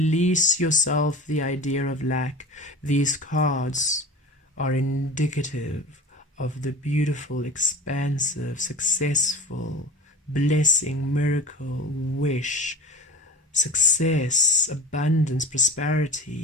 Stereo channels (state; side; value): normal; both; correlation 0.34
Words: yourself the idea of lack. These cards are indicative of the beautiful, expansive, successful, blessing, miracle, wish, success, abundance,